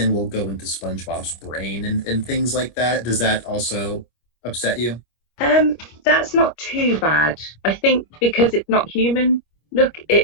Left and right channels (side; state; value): right; late; 25 ms